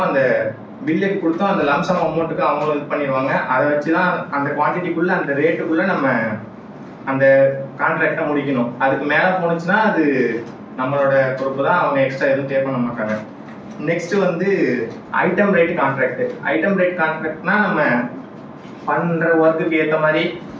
அந்த பில்லுக்கு கொடுத்தோம், அந்த லம்சம் அமௌண்ட்டுக்கு அவங்க இது பண்ணிடுவாங்க. அதை வச்சு தான் அந்த குவான்டிட்டிக்குள்ள அந்த ரேட்டுக்குள்ள நம்ம அந்த கான்ட்ராக்டை முடிக்கணும். அதுக்கு மேலே போனுச்சுன்னா அது நம்மளோட பொறுப்பு தான், அவங்க எக்ஸ்ட்ரா எதுவும் பே பண்ண மாட்டாங்க. நெக்ஸ்ட் வந்து item rate contract. Item rate கான்ட்ராக்ட்னா நம்ம பண்ற ஒர்க்குக்கு ஏற்ற மாதிரி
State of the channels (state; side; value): identical; both; correlation 1.00